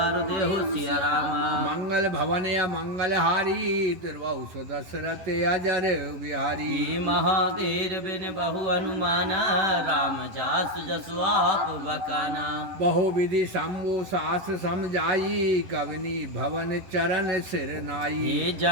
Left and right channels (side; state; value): left; late; 11 ms